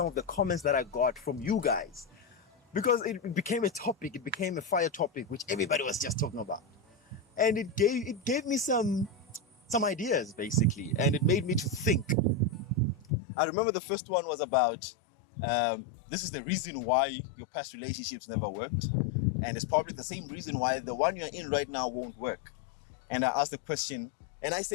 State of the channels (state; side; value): drops out; right; at 13.1 s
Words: of the comments that I got from you guys. Because it became a topic. It became a fire topic, which everybody was just talking about. And it gave me some ideas, basically. And it made me to think. I remember the first one was about, this is the reason why your past relationships never worked. And it's probably the same reason why the one you're in right now won't work. And I asked the question, and I